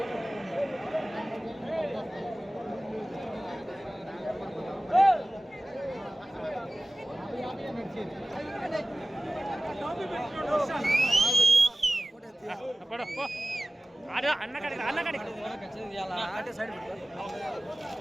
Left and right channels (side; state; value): both; normal; correlation 0.96